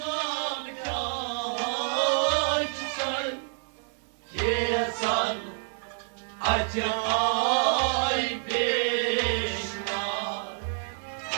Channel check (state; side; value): silent; left; 58 dB below the other